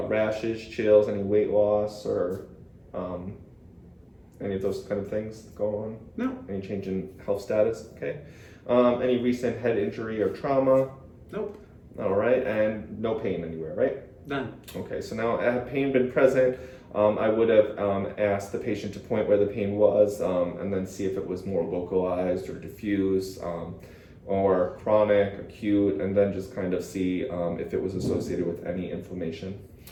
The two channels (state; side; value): identical; both; correlation 1.00